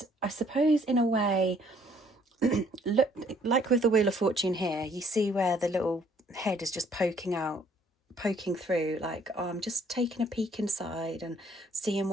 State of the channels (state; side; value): normal; both; correlation 0.62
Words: I suppose in a way, look, like with the Wheel of Fortune here, you see where the little head is just poking through, like, oh, I'm just taking a peek inside and seeing